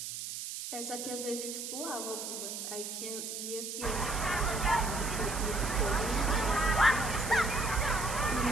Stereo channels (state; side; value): noise; right; hiss, 6 dB below the sound